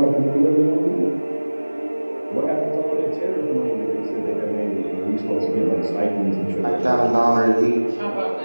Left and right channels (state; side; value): inverted; both; correlation -1.00